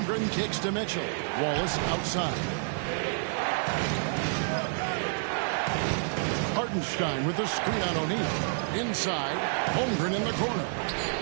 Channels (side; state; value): left; silent; 59 dB below the other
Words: kicks to Mitchell. Wallace outside. Hartenstein with the screen on O'Neal. Inside, Holmgren in the corner.